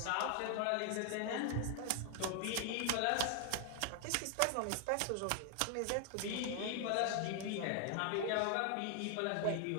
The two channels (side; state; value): both; different; correlation 0.00